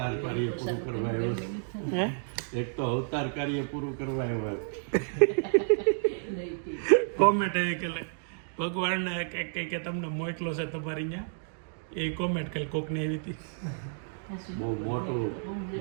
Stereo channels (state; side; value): silent; left; digital silence